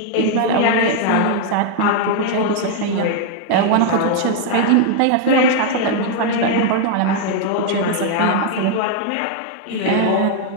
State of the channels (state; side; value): different; both; correlation 0.00